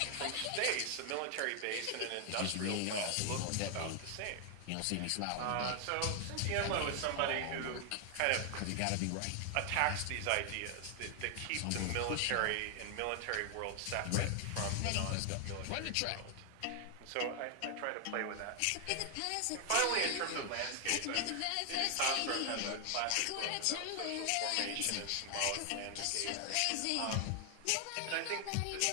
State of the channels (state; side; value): different; both; correlation 0.00